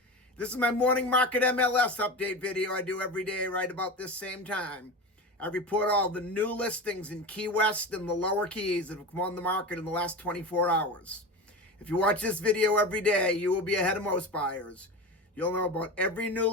This is my morning market MLS update video I do every day right about this same time. I report all the new listings in Key West and the lower Keys that have come on the market in the last 24 hours. If you watch this video every day, you will be ahead of most buyers. You'll know about every new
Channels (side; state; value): both; normal; correlation 0.27